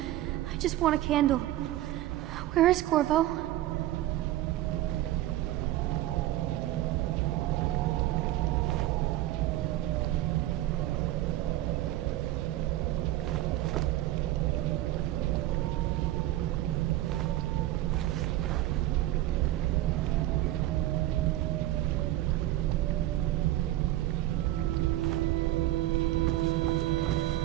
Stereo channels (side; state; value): left; quieter; 15.0 dB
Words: I just want a candle. Where is Corvo?